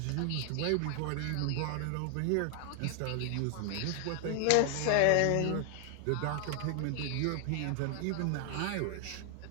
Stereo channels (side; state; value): both; different; correlation 0.00